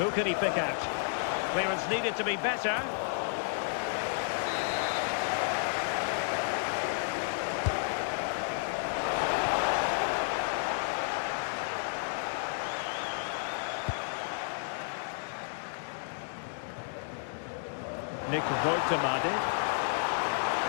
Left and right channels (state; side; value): silent; right; digital silence